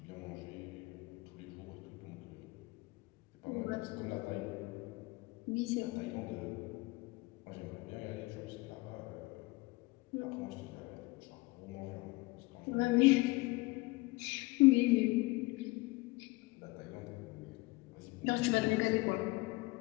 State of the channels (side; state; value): right; quieter; 23.1 dB